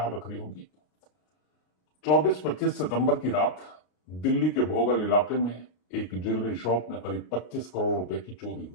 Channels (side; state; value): right; late; 33 ms